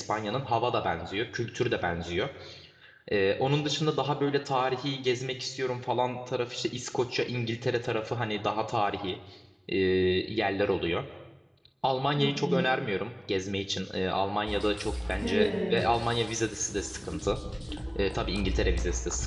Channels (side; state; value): both; identical; correlation 1.00